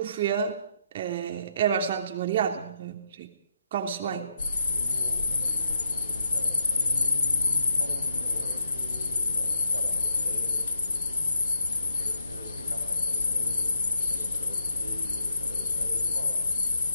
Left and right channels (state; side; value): inverted; both; correlation -0.77